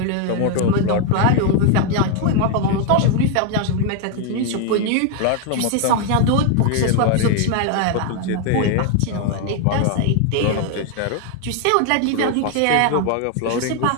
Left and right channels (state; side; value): different; both; correlation 0.01